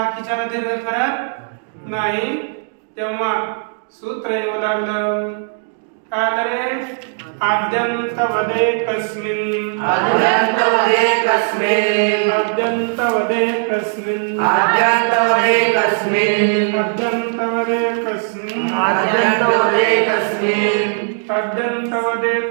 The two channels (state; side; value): silent; left; digital silence